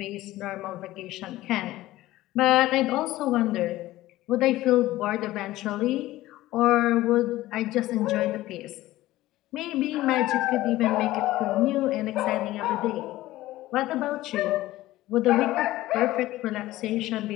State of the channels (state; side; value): quieter; right; 16.5 dB